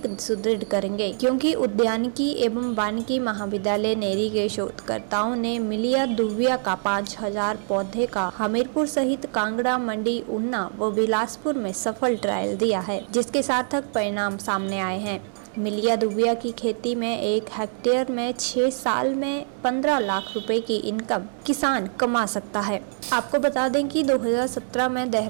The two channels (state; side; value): silent; left; 62 dB below the other